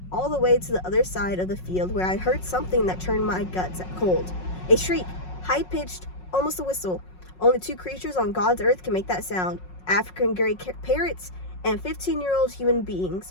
all the way to the other side of the field, where I heard something that turned my guts cold. A shriek, high-pitched, almost a whistle. Only 2 creatures on God's earth can make that sound: African gray parrots and 15-year-old human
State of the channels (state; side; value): late; right; 5.5 ms